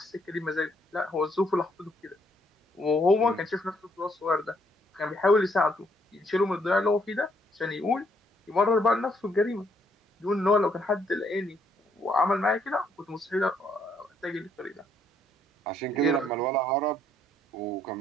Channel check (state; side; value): normal; both; correlation 0.70